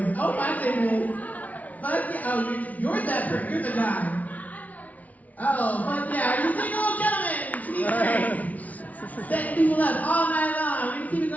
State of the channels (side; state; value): right; late; 0.072 ms